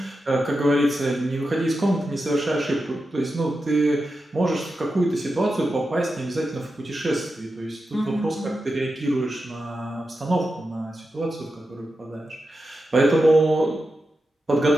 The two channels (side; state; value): both; normal; correlation 0.90